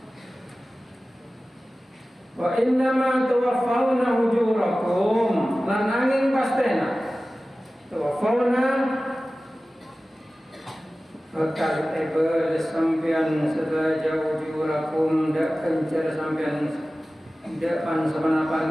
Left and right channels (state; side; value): normal; both; correlation 0.96